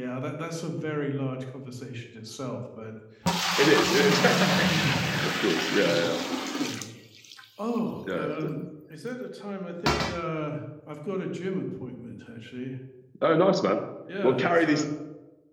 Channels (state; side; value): identical; both; correlation 1.00